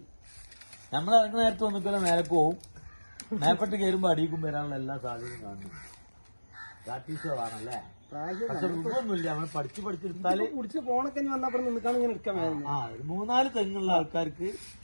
നമ്മൾ ഇറങ്ങുന്ന നേരത്തെ വന്നിക്കല്ലോ നേരക്ക് പോവും. മേപ്പെട്ട് കയറുമ്പോ അടിയിക്കും വരാനുള്ള എല്ലാ സാധ്യതയും കാണുന്നു. പ്രാക്ടീസുകളാണല്ലേ. പക്ഷെ ഒന്നുമില്ല, നമ്മൾ പഠിച്ചെടുത്താല് കുടിച്ച് ഫോണൊക്കെ വന്നപ്പോ നിൽക്കാൻ ഇങ്ങനെ എടുക്കാൻ. 3-4 തെങ്ങുള്ള ആൾക്കാർക്ക്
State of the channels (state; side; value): inverted; both; correlation -1.00